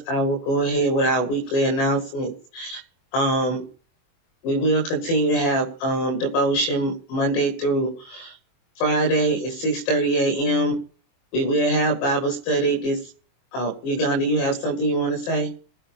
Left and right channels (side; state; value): right; late; 24 ms